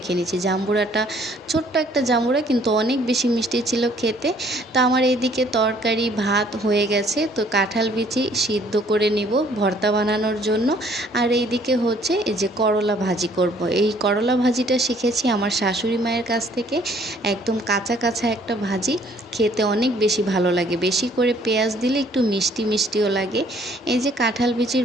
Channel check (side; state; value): both; normal; correlation 0.60